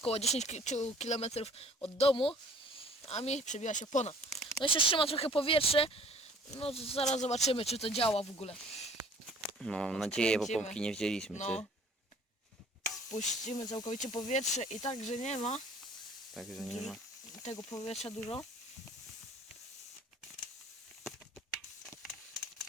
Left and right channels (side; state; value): both; normal; correlation 0.52